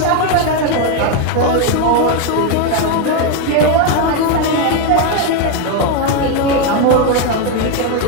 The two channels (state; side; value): different; both; correlation 0.02